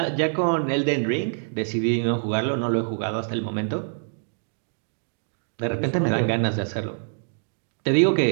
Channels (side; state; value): left; silent; digital silence